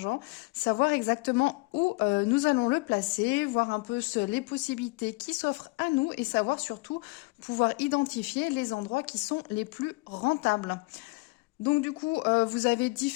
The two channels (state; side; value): quieter; right; 26.0 dB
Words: savoir exactement où nous allons le placer, voir un peu les possibilités qui s'offrent à nous et savoir surtout pouvoir identifier les endroits qui sont les plus rentables. Donc du coup, vous avez